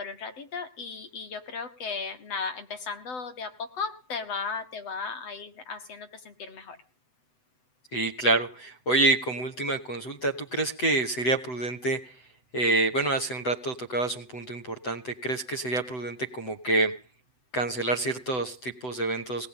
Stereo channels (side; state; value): right; late; 7.9 ms